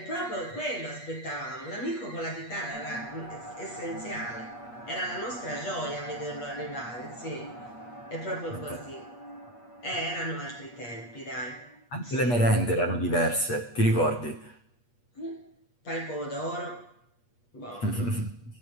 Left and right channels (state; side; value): late; right; 8.4 ms